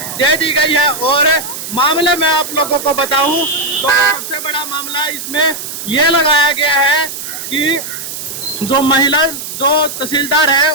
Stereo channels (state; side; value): noise; right; hiss, 8 dB below the sound